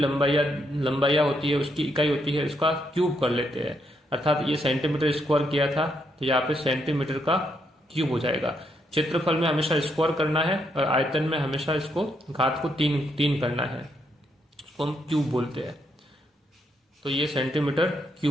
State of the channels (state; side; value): normal; both; correlation 0.77